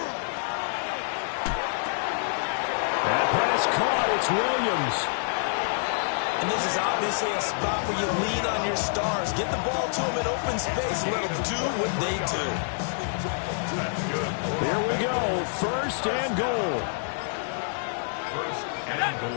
That pass caught. It's Williams. And this is obviously a spot where you lean on your stars. Get the ball to them in open space. Let them do what they do. Here we go. 1st and goal. 1st and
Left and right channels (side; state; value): right; silent; digital silence